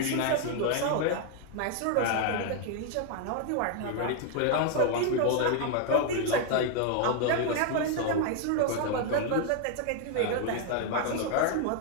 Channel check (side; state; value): both; different; correlation 0.00